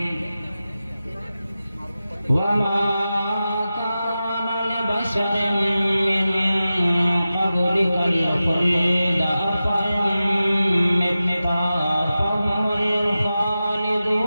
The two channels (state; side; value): inverted; both; correlation -0.93